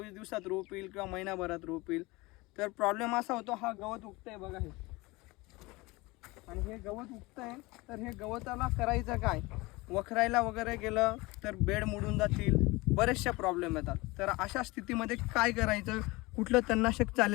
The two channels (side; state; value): right; quieter; 22.8 dB